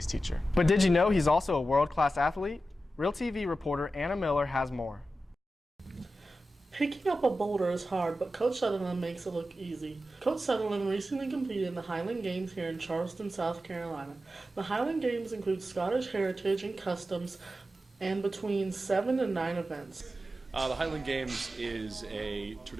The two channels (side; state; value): both; normal; correlation 0.92